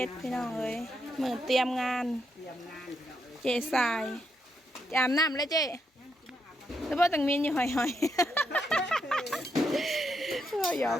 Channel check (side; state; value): both; normal; correlation 0.80